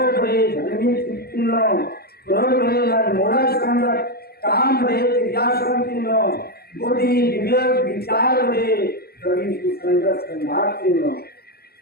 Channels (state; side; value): late; right; 0.46 ms